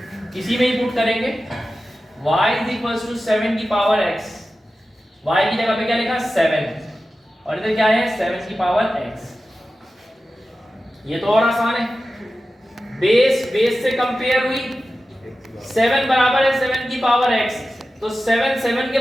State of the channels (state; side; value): normal; both; correlation 0.94